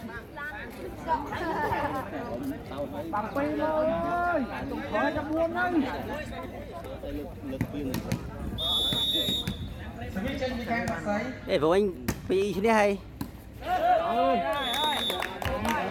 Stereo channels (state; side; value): identical; both; correlation 1.00